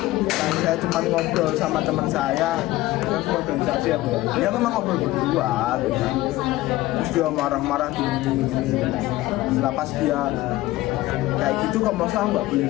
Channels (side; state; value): right; quieter; 17.4 dB